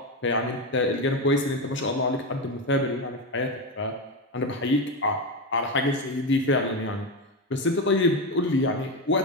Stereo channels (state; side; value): normal; both; correlation 0.14